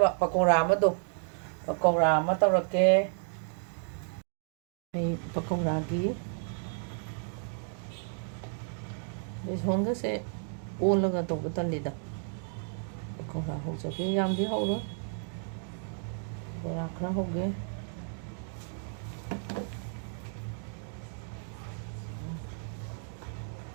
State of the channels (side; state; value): left; silent; 56 dB below the other